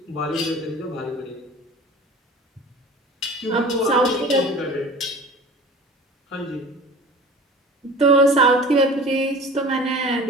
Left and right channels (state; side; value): normal; both; correlation 0.41